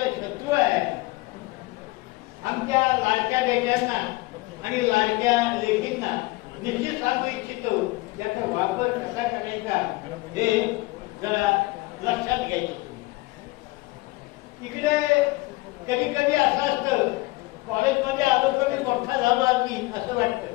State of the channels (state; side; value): quieter; right; 22.0 dB